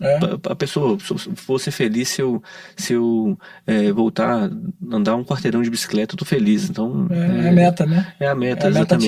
A pessoa, vou ser feliz se eu voltar a andar um quarteirão de bicicleta, eu tô feliz, então... É a meta, né? É a meta, a meta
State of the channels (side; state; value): both; identical; correlation 1.00